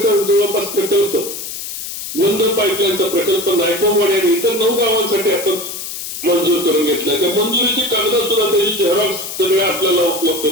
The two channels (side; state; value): left; noise; hiss, 8 dB below the sound